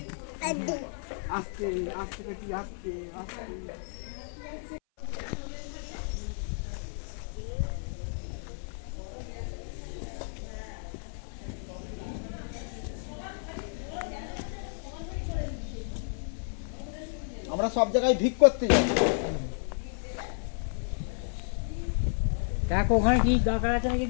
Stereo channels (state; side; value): silent; right; 57 dB below the other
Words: আস্তে আস্তে দেখি, আস্তে আস্তে। আমরা সব জায়গায় ভিক করতে যাই। দেখ ওখানে কি দরকার আছে নাকি